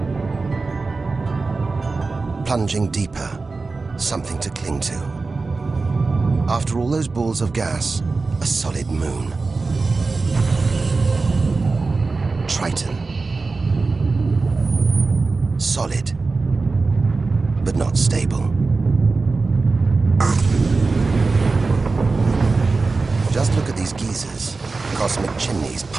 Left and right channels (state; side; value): quieter; left; 3.9 dB